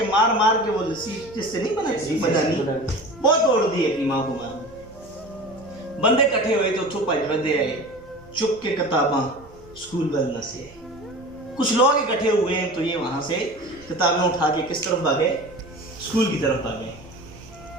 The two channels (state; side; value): noise; right; hum, 26 dB below the sound